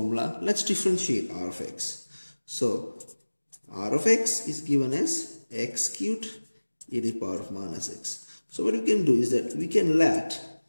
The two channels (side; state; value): both; inverted; correlation -1.00